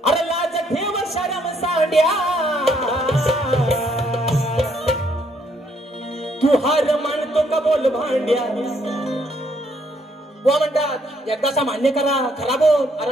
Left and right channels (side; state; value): both; normal; correlation 0.70